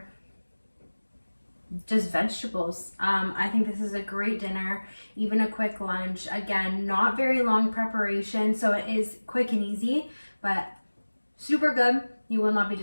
just vegetables. I think this is a great dinner, even a quick lunch. Again, not very long preparation, so it is quick and easy, but super good. You will not be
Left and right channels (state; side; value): inverted; both; correlation -1.00